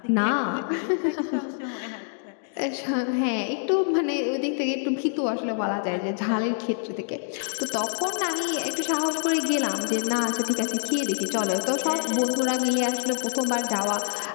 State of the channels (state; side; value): silent; right; digital silence